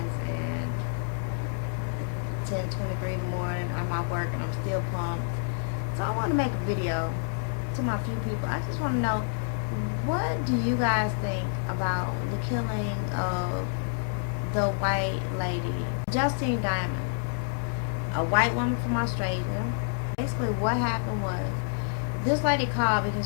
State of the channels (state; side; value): silent; right; digital silence